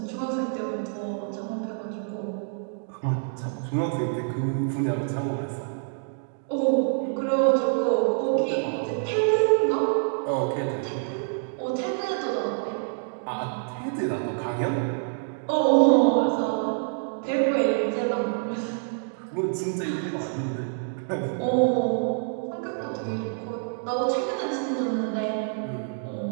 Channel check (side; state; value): left; silent; digital silence